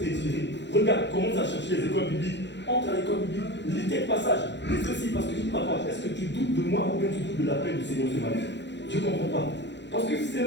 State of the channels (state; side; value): late; right; 0.52 ms